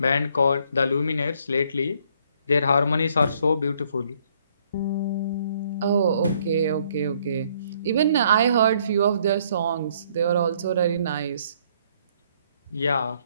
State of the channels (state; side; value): inverted; both; correlation -0.66